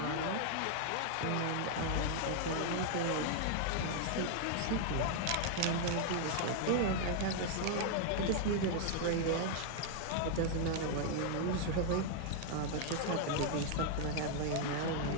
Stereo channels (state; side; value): different; both; correlation 0.00